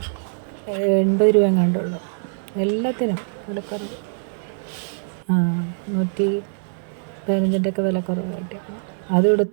രൂപ എങ്ങാണ്ടുള്ളൂ. എല്ലാത്തിനും വിലക്കുറവ്. 115-ഒക്കെ വിലക്കുറവ് കിട്ടിയപ്പോൾ അതും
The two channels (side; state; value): left; silent; 64 dB below the other